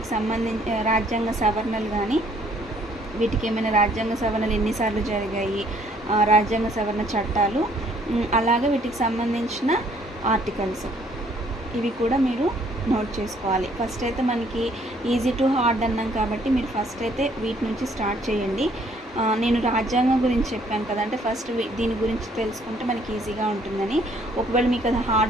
రాజ్యాంగ సవరణలు కానీ, వీటికి ఏమైనా రాజ్యాంగ సవరణలు ఎన్నిసార్లు జరిగాయి, రాజ్యాంగ సవరణ చట్టాలు, అలాగే వీటికి సంబంధించిన ఆర్టికల్స్, ఇవి కూడా మీరు నోట్ చేసుకోవాలి. ఫస్ట్ అయితే మనకి ఈజీ టు హార్డ్ అన్నాం కాబట్టి మీరు ఫస్ట్ అయితే వీటి నుంచి స్టార్ట్ చేయండి. నేను రాజ్యాంగం గురించి చెప్పాను కదా, అంటే ఫస్ట్ దీని గురించి తెలుసుకుంటే మనకి ఈజీగా ఉంటుందని. ఒకవేళ మీకు అది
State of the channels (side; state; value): both; normal; correlation 0.63